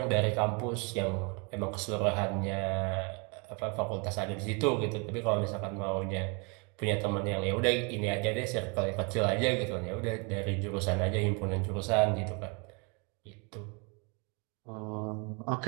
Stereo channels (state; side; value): quieter; left; 32.9 dB